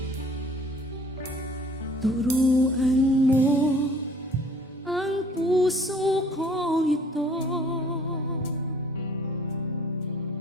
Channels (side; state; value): both; normal; correlation 0.54